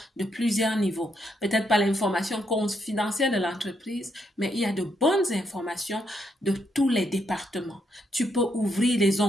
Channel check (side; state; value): both; normal; correlation 0.77